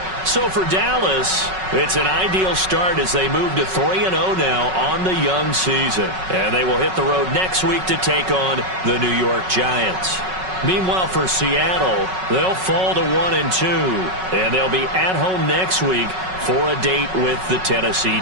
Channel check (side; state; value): left; late; 5.4 ms